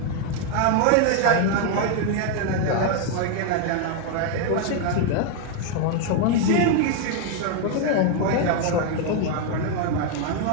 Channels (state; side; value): different; both; correlation 0.00